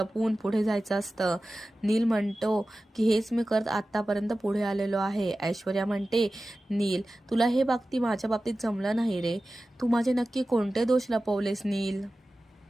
पुढे जायचं असतं. नील म्हणतो की हेच मी करत आतापर्यंत पुढे आलेलो आहे. ऐश्वर्या म्हणते नील तुला हे बाबतीत माझ्या बाबतीत जमलं नाही रे, तू माझे नक्की कोणते दोष लपवलेस नील.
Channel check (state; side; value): normal; both; correlation 0.95